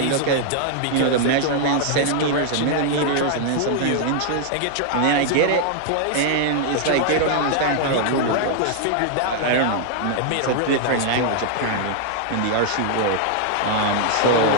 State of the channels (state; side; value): different; both; correlation 0.00